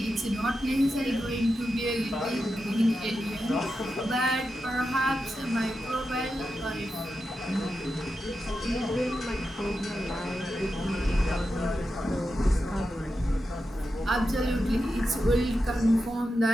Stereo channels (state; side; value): normal; both; correlation 0.89